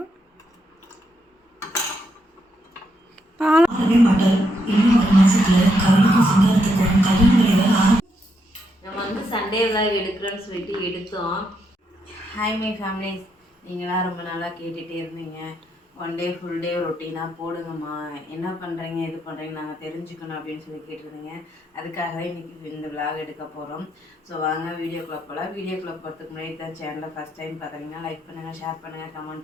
நம்ம வந்து சண்டே விலாக் எடுக்கிறோன்னு சொல்லிட்டு எடுத்தோம். ஹாய் மை ஃபேமிலிஸ், நீங்களாம் ரொம்ப நாளாக கேட்டுகிட்டே இருந்தீங்க. ஒன் டே ஃபுல் டே ரொட்டீனாக போடுங்கம்மா, என்ன பண்ணுறீங்க இது பண்ணுறீங்க நாங்கள் தெரிஞ்சுக்கணும் அப்படின்னு சொல்லி கேட்டிருந்தீங்க. அதுக்காக இன்றைக்கி இந்த விலாக் எடுக்க போகிறோம். ஸோ வாங்க வீடியோக்குள்ளே போகலாம். வீடியோக்குள்ளே போகிறதுக்கு முன்னாடி தான் சேனலை ஃபஸ்ட் டைம் பார்க்குறீங்கன்னா லைக் பண்ணுங்கள், ஷேர் பண்ணுங்கள்,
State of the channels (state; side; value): normal; both; correlation 0.79